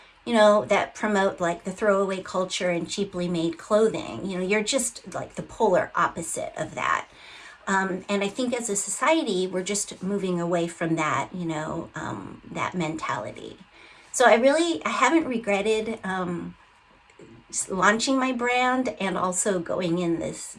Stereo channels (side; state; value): both; identical; correlation 1.00